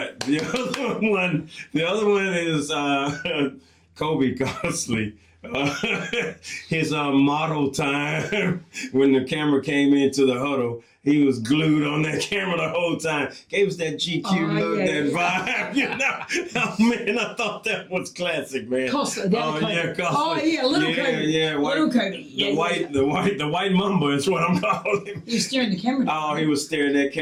the other one is Kobe Gosley. His model time when the camera came into the huddle, he was glued on that camera the whole time. Gave us that GQ look, that vibe, you know. Oh man, I thought that was classic, man. Costa, Kobe. little Kobe. Yeah, little Kobe. The white mamba is what I'm calling him. He was staring the camera down. Oh, he was staring that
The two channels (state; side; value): identical; both; correlation 1.00